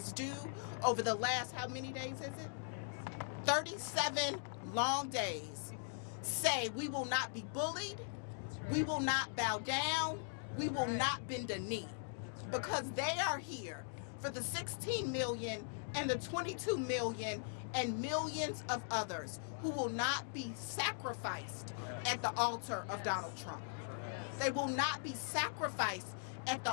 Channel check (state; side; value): silent; right; digital silence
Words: do over the last, how many days is it? 37 long days, say we will not be bullied, we will not bow down, we will not bend a knee, because they are here for the 16 million and the 22 million and millions of others who will not be sacrificed at the altar of Donald Trump. They will not be sacrificed at